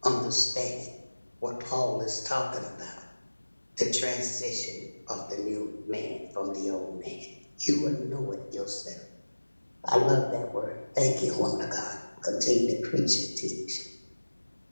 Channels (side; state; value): both; inverted; correlation -1.00